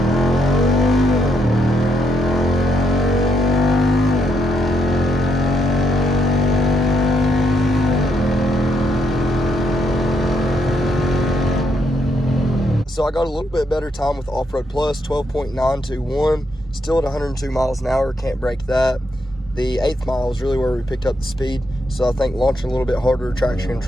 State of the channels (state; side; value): normal; both; correlation 0.77